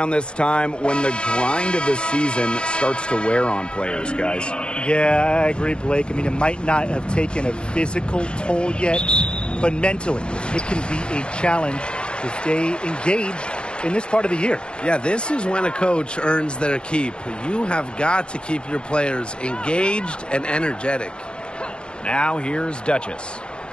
this time when the grind of the season starts to wear on players, guys. Yeah, I agree, Blake. I mean, it might not have taken a physical toll yet, but mentally, it can be a challenge to stay engaged in this part of the year. Yeah, this is when a coach earns their keep. You have got to keep your players engaged and energetic. Now here's Duchess.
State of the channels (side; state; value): right; late; 0.052 ms